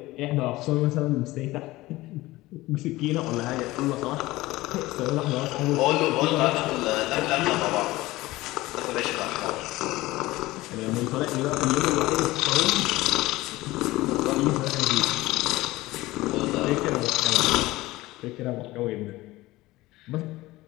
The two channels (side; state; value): right; quieter; 18.8 dB